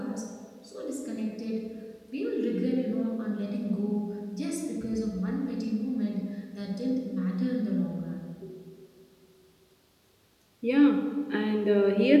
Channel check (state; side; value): identical; both; correlation 1.00